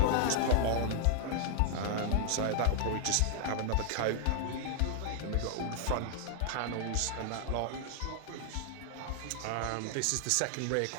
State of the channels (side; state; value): both; different; correlation -0.01